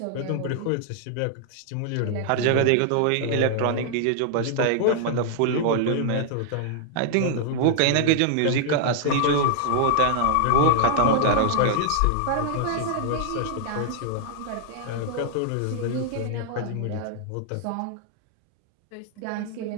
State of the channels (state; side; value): different; both; correlation -0.01